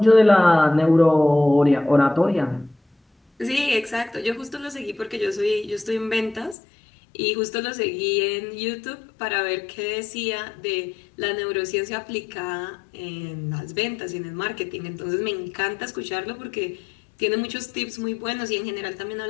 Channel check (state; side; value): drops out; right; at 6.6 s